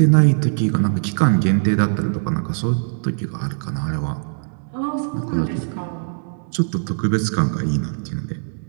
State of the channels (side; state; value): left; silent; digital silence